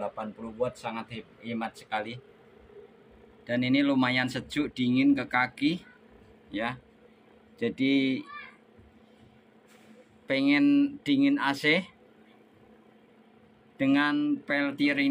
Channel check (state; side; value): identical; both; correlation 1.00